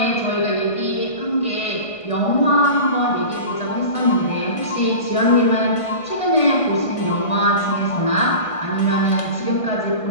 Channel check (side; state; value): right; late; 1.5 ms